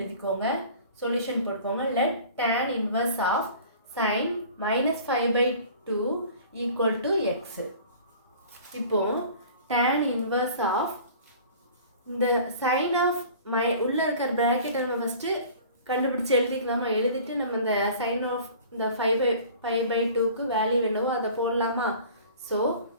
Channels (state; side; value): inverted; both; correlation -0.45